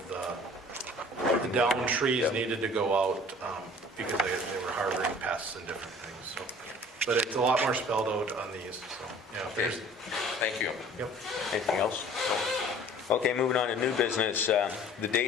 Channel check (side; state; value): both; normal; correlation 0.49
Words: the down trees needed to go out because they were harboring pests and different things, so. but it's a lot more spelled out on these, so, yeah. if Okay, there's- thank you. Yep. Anything else? Okay, moving on to new business. The